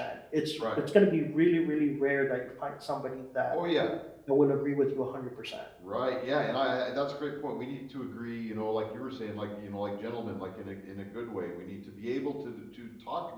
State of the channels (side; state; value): both; identical; correlation 1.00